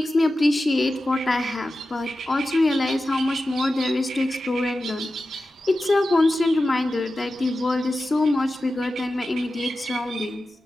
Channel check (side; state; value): both; normal; correlation 0.93